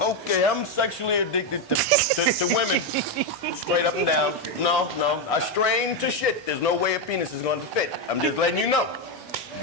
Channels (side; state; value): both; normal; correlation 0.06